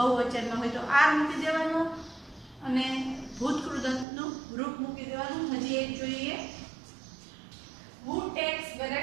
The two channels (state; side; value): drops out; left; at 4.0 s